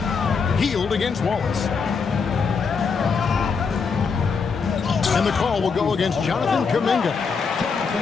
Hield against Wallace. And the call will go against Jonathan Kuminga.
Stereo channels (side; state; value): right; quieter; 5.4 dB